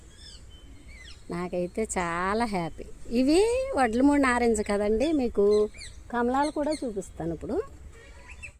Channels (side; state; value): both; identical; correlation 1.00